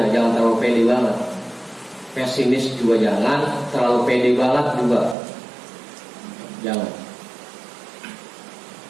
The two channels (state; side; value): drops out; left; at 5.2 s